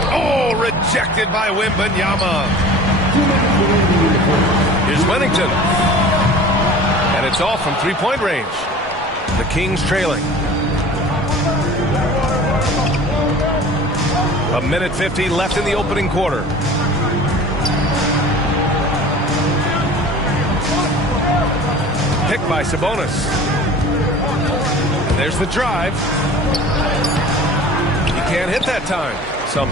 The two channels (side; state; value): both; normal; correlation 0.42